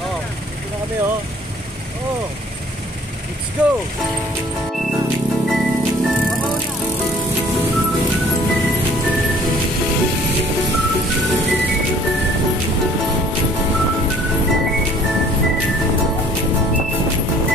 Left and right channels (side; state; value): both; normal; correlation 0.54